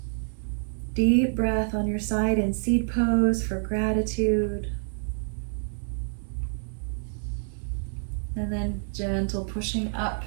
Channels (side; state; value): left; silent; 60 dB below the other